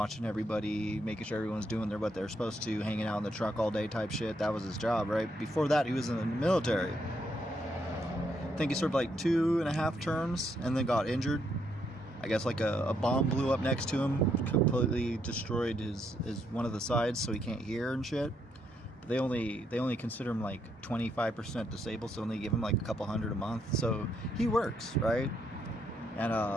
everybody, making sure everyone's doing what they're supposed to, hanging out in the truck all day type shit. That was his job, right? Before that, he was in the military. I think he served like 2.5 terms and then got injured. I guess like a bomb blew up next to him, completely destroyed his one of the sides, so he can't hear and shit. But they only consider him like 25% disabled, so only give him like a couple hundred a month. So he works, right? And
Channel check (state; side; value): normal; both; correlation 0.75